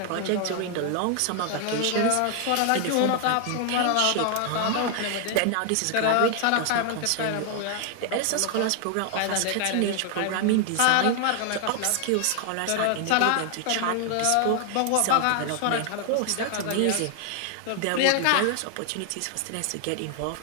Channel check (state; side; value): different; both; correlation 0.00